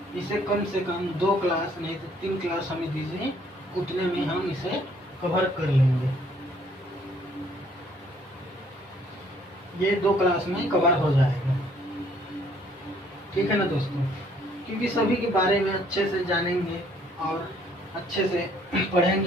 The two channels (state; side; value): normal; both; correlation 0.63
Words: इसे कम से कम 2 क्लास नहीं तो 3 क्लास हमें दीजिए, उतने में हम इसे कवर कर लेंगे। ये 2 क्लास में कवर हो जाएगा, ठीक है ना दोस्तों, क्योंकि सभी के बारे में अच्छे से जानेंगे और अच्छे से